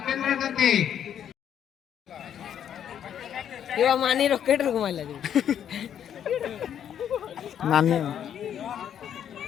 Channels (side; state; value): right; quieter; 9.4 dB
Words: मानी रॉकेट रुक मारला नानी